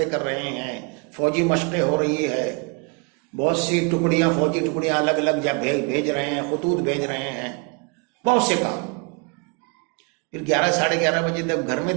کر رہے ہیں، فوجی مشقیں ہو رہی ہے، بہت سی ٹکڑیاں، فوجی ٹکڑیاں الگ الگ جگہ بھیج رہے ہیں، خطوط بھیج رہے ہیں، بہت سے کام. پھر 11 ساڑھے 11 بجے جب گھر میں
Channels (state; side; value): quieter; left; 33.5 dB